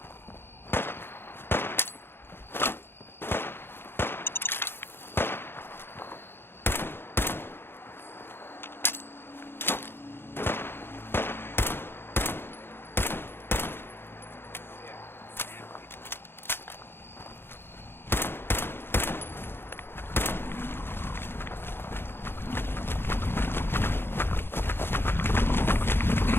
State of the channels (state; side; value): late; right; 0.11 ms